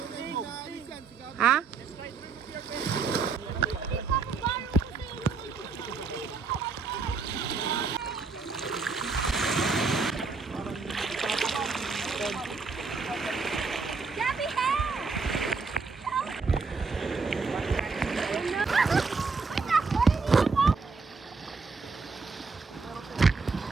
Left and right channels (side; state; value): left; quieter; 4.6 dB